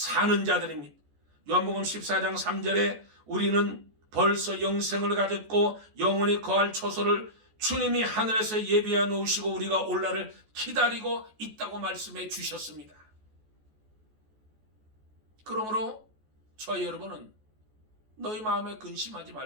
자들입니다. 요한복음 14장 3절에 우리는 벌써 영생을 가졌고 영원히 거할 초소를 주님이 하늘에서 예비해 놓으시고 우리가 올라를 기다리고 있다고 말씀해 주셨습니다. 그러므로 저와 여러분은 너희 마음에 근심하지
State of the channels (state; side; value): late; left; 14 ms